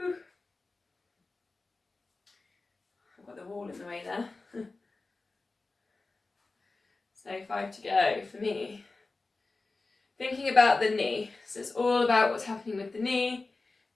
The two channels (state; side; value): quieter; right; 3.6 dB